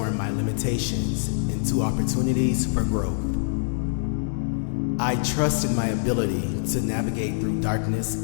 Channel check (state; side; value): silent; right; digital silence